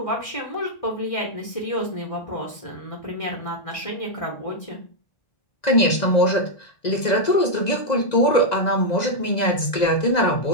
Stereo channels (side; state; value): right; late; 1.9 ms